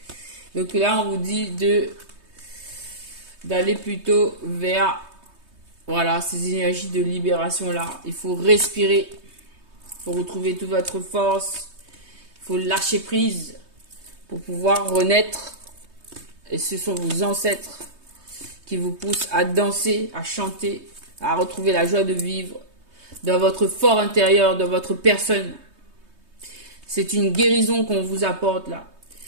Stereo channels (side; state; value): left; late; 3.2 ms